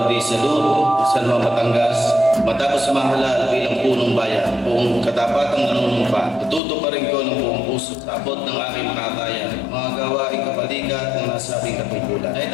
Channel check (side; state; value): right; drops out; at 6.6 s